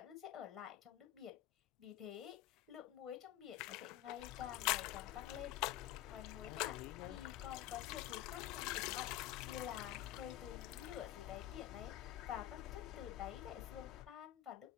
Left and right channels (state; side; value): quieter; right; 13.6 dB